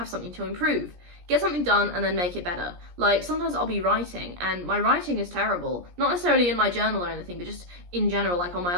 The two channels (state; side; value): late; left; 17 ms